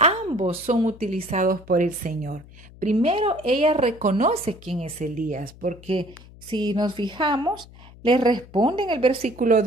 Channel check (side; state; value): left; noise; hum, 21 dB below the sound